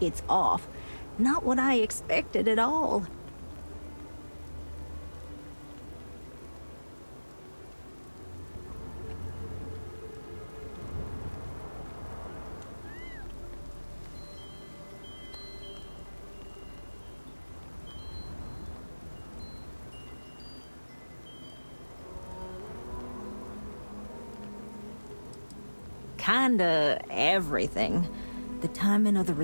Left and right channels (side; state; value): both; inverted; correlation -1.00